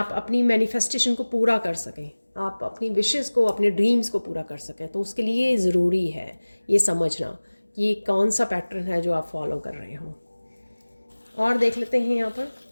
अपनी मैनिफेस्टेशन को पूरा कर सकें, आप अपनी विशेस को, अपने ड्रीम्स को पूरा कर सकें। तो उसके लिए ज़रूरी है ये समझना कि कौन सा पैटर्न है जो आप फॉलो कर रहे हो। और देख लेते हैं यहाँ पर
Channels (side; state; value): both; inverted; correlation -1.00